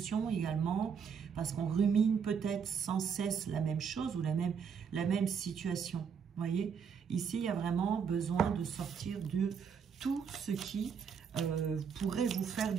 également, parce qu'on rumine peut-être sans cesse la même chose ou la même situation. Vous voyez, ici, il y a vraiment besoin de sortir de tout ce qui pourrait vous faire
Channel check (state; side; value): quieter; left; 6.7 dB